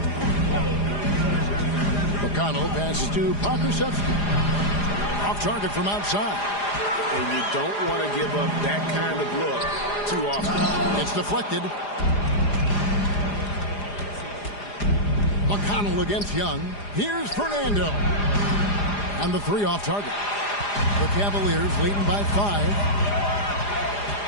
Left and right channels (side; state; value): right; late; 4.9 ms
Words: McConnell passes to Pokusevski. Off target from outside. And you don't want to give up that kind of look too often. It's deflected. McConnell against Young. Here's Fernando. And the 3 off target. The Cavaliers leading by 5.